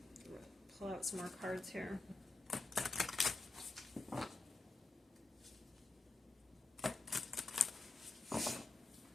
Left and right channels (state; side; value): quieter; right; 3.4 dB